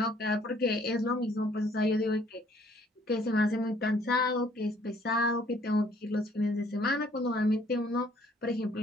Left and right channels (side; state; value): both; normal; correlation 0.61